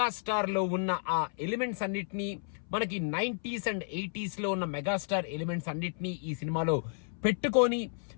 లో ఉన్న ఆ ఎలిమెంట్స్ అన్నిటినీ, మనకి 90s అండ్ 80s లో ఉన్న మెగాస్టార్ ఎలిమెంట్స్ అన్నిటినీ ఈ సినిమాలో పెట్టుకొని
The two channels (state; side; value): silent; right; 56 dB below the other